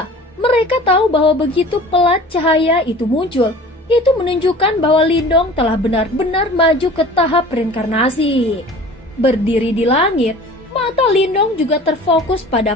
mereka tahu bahwa begitu pelat cahaya itu muncul, itu menunjukkan bahwa Lindong telah benar-benar maju ke tahap reinkarnasi. Berdiri di langit, mata Lindong juga terfokus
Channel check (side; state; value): both; normal; correlation 0.43